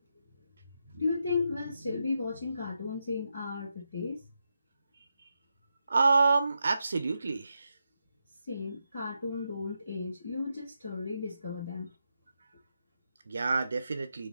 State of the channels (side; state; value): both; inverted; correlation -0.86